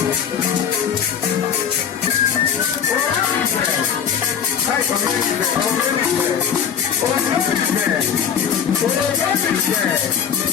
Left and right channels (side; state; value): right; quieter; 7.9 dB